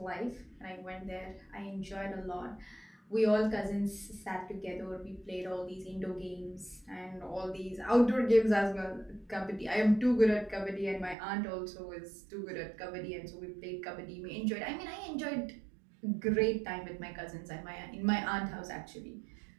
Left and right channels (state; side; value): drops out; left; at 11.2 s